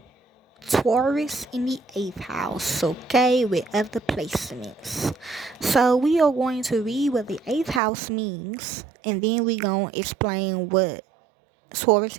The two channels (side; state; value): left; drops out; at 7.8 s